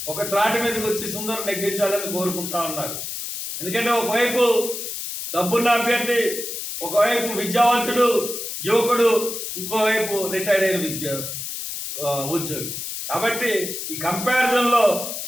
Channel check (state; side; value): noise; left; hiss, 6 dB below the sound